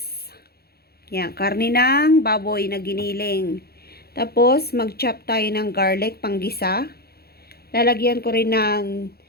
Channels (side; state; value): right; late; 0.46 ms